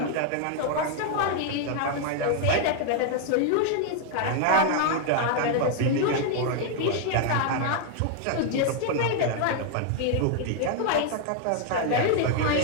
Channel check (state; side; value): different; both; correlation 0.00